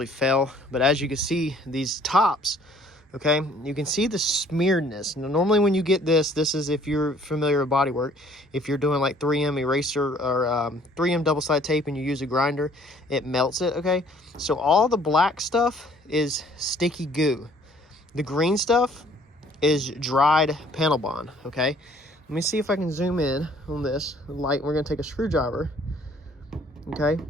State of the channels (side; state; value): both; normal; correlation 0.58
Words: fail. But as you can see, these tops, okay, you can see the smearedness. Now, normally when you get this is, if you're familiar with bodywork, if you're doing like 3M eraser or 3M double-sided tape and you use a grinder, it melts it, okay? So all the black stuff is sticky goo. The green stuff is dried panel bond, okay? Let me see if I can zoom in on this light. We're gonna take a screwdriver, okay?